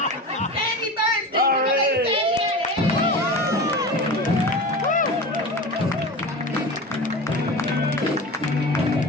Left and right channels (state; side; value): normal; both; correlation 0.30